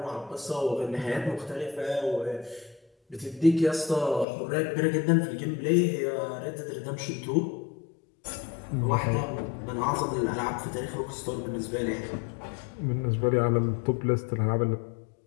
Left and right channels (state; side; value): drops out; right; at 4.2 s